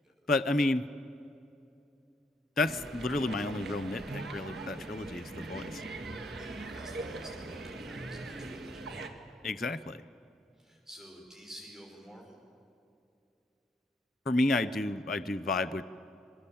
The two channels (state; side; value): normal; both; correlation 0.72